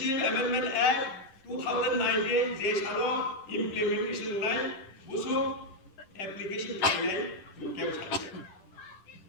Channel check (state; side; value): late; right; 10 ms